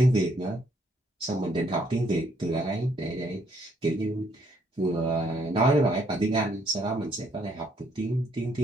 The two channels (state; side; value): normal; both; correlation 0.68